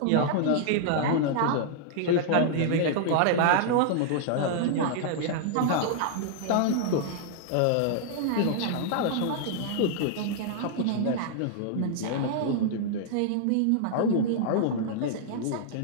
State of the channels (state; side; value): different; both; correlation -0.01